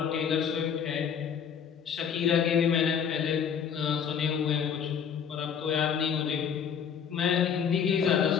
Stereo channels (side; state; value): right; quieter; 7.6 dB